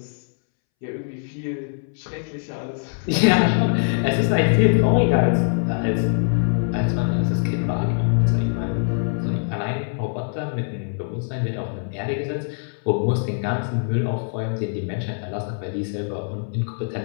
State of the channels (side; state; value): right; silent; 63 dB below the other